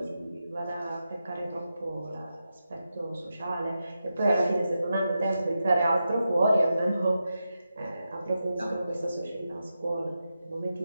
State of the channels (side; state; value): both; inverted; correlation -0.89